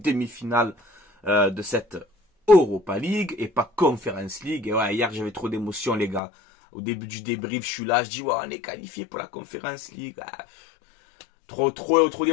de cette Europa League et pas Conference League. Et ouais, hier j'avais trop d'émotions les gars. Au début du débrief, je suis là, je dis ouais, on est qualifié pour la Conference League. Ah, trop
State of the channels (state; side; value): drops out; right; at 6.2 s